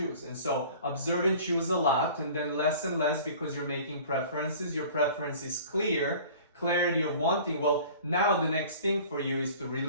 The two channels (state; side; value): inverted; both; correlation -0.46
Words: And so observe and choose a lot, and then less and less because you're making preferences. Your preference is clear, clarity of wanting. Well, now the next thing for you is to